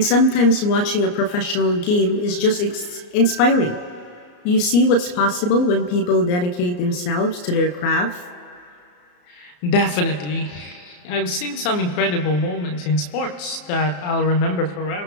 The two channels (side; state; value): right; late; 34 ms